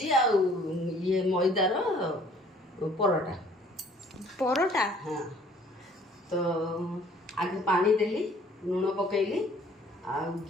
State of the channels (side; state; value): both; normal; correlation 0.56